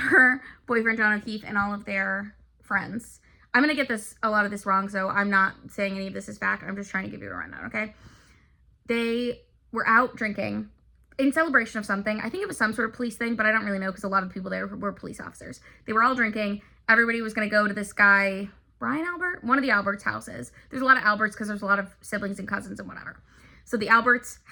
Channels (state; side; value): identical; both; correlation 1.00